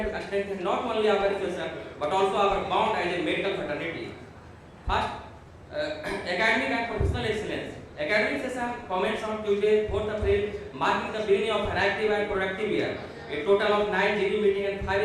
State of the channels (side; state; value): both; identical; correlation 1.00